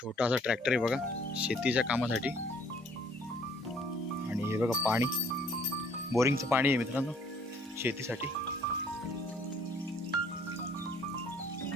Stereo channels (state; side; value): normal; both; correlation 0.60